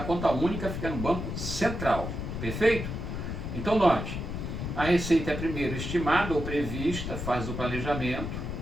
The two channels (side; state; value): left; noise; rumble, 5 dB below the sound